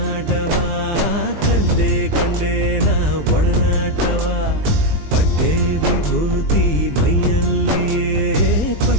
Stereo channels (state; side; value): late; left; 20 ms